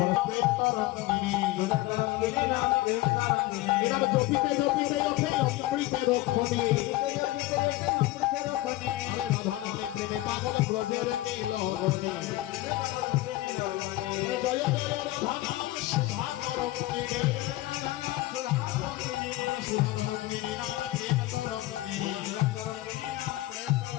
প্রেম তরঙ্গিনী, এবার জপিতে জপিতে ওঠে অমৃতের রক্ষণী, রাধা নামে প্রেমে পাগল ব্রজের নীলমণি, জয় জয় রাধা নাম সুধা তরঙ্গিনী, সুধা তরঙ্গিনী নাম প্রেম তরঙ্গিনী,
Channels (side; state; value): right; quieter; 17.6 dB